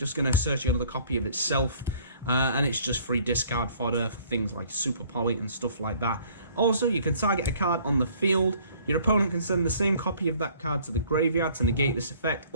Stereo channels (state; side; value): inverted; both; correlation -0.56